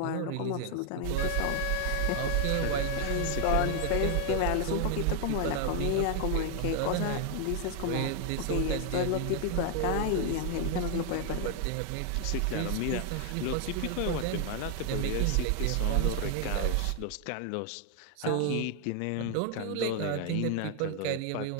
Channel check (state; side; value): different; both; correlation 0.00